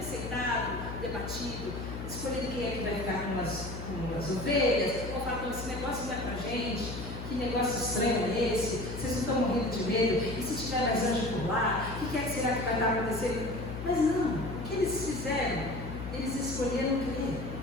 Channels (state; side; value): noise; left; hum, 7 dB below the sound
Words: sentado, debatido, escolhido quem é que vai ficar com as ovelhas, ou falar: esse negócio não é pra gente. Que negócio estranho é esse? Vocês não estão morrendo de medo? E se tiver mais anjo por lá? O que será que vai estar acontecendo? Mas não, o que eles fizeram? Eles escolheram crer.